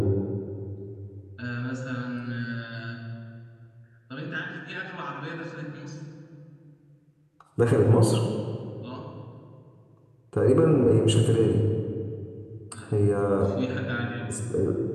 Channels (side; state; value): both; identical; correlation 1.00